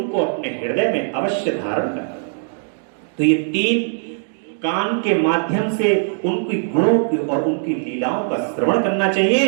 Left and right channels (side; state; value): left; silent; digital silence